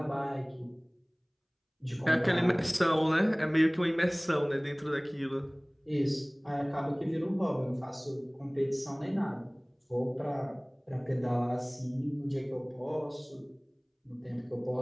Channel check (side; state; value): both; identical; correlation 1.00